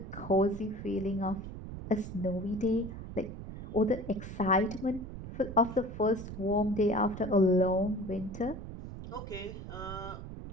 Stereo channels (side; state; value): right; noise; rumble, 10 dB below the sound